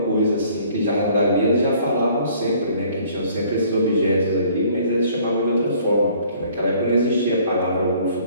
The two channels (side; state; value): both; inverted; correlation -0.57